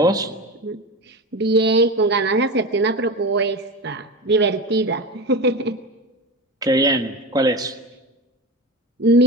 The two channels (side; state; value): both; normal; correlation 0.25